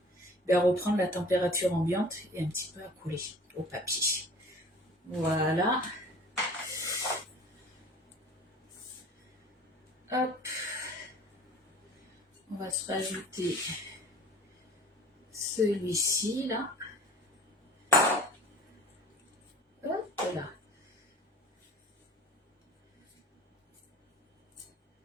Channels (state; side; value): normal; both; correlation 0.45